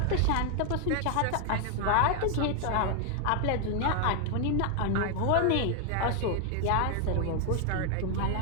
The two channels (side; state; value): both; different; correlation 0.00